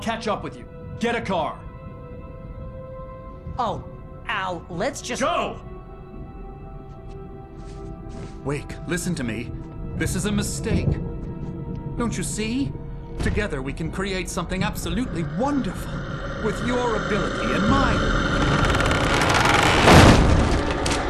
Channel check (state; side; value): identical; both; correlation 1.00